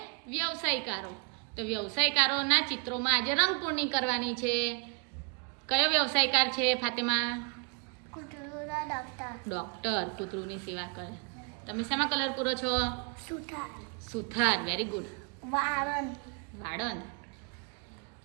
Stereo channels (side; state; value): left; quieter; 36.9 dB